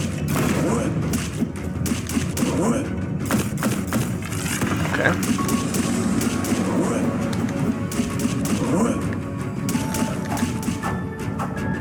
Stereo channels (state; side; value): identical; both; correlation 1.00